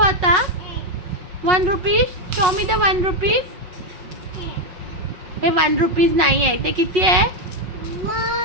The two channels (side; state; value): left; late; 5.5 ms